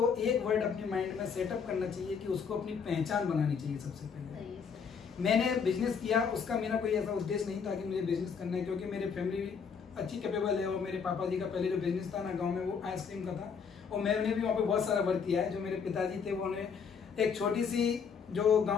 एक वर्ड अपने माइंड में सेटअप करना चाहिए कि उसको अपनी पहचान बनानी चाहिए। सबसे पहले मैंने बिजनेस किया, उसका मेरा कोई ऐसा उद्देश्य नहीं था कि मुझे बिजनेस करना है, क्योंकि मेरे फैमिली अच्छी कैपेबल है और मेरे पापा जी का पहले जो बिजनेस था ना गाँव में वो आइसक्रीम का था और मैंने भी वहाँ पे बहुत सारा वर्क किया है। जो मेरे पिताजी थे उन्होंने एक छोटी सी जो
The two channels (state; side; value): quieter; right; 6.2 dB